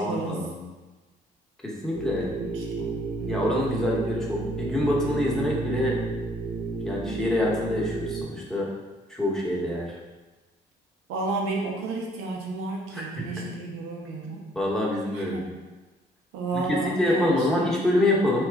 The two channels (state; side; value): normal; both; correlation 0.63